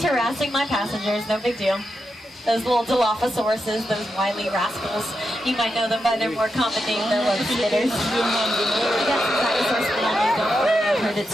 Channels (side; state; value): both; normal; correlation 0.86